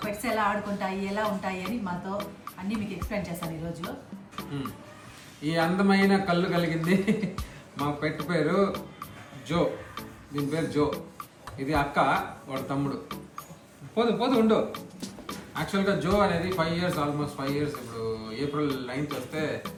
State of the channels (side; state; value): both; identical; correlation 1.00